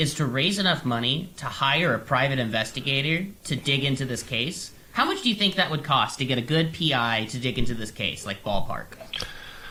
to raise enough money to hire a private investigator to dig into this case. How much do you think that would cost to get a good PI to dig into this case, like ballpark?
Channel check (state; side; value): identical; both; correlation 1.00